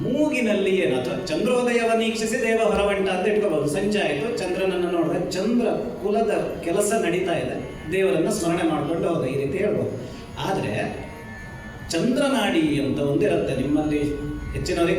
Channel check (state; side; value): identical; both; correlation 1.00